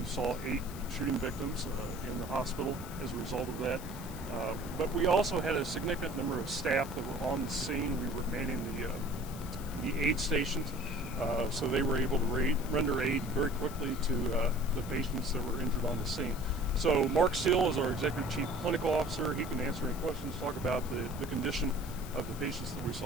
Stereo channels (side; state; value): left; noise; hiss, 15 dB below the sound